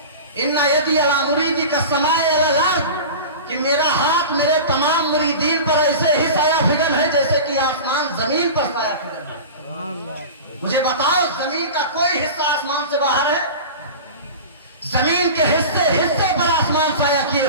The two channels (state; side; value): inverted; both; correlation -0.32